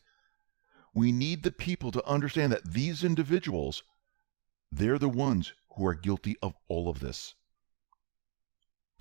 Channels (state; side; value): quieter; left; 28.4 dB